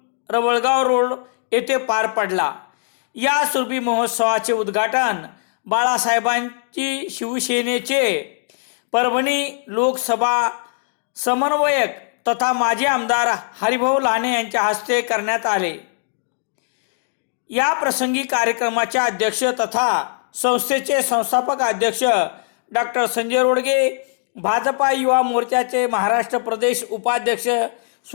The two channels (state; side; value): silent; right; digital silence